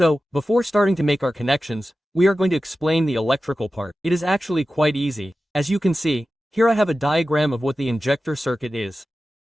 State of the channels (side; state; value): both; normal; correlation 0.94